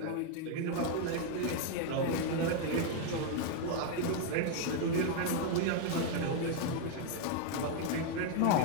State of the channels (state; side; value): different; both; correlation 0.01